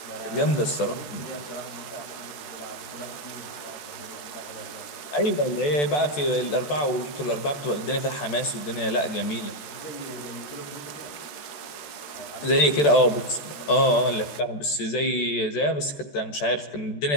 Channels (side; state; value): right; late; 14 ms